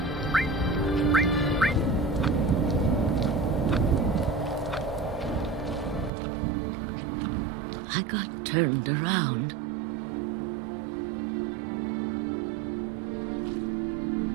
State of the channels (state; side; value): drops out; left; at 6.1 s